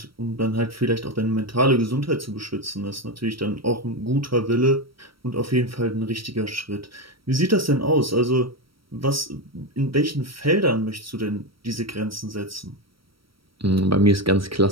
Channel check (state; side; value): late; left; 0.75 ms